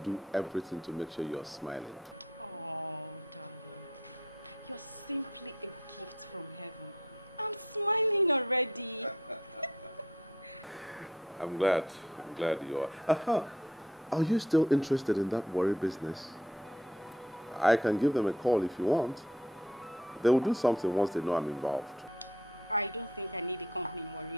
everything to make sure you're smiling. Oh, darling. You're simply a gift from heaven. I'm smiling already. I'm glad you are. Are you still interested in that worry business? I can give them a call if you want. They will do something once they know I'm involved. I don't think I need a company in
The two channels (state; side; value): normal; both; correlation 0.58